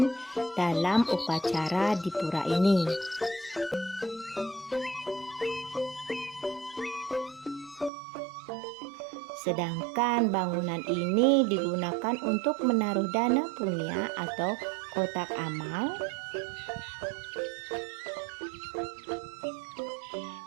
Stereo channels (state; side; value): drops out; left; at 7.9 s